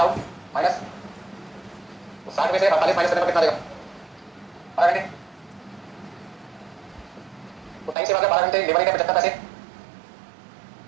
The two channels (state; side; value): drops out; left; at 8.0 s